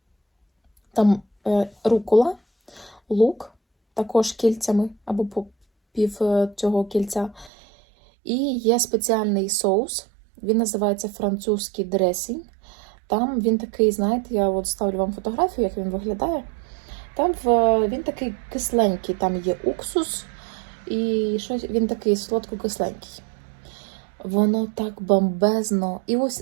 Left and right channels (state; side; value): drops out; left; at 7.5 s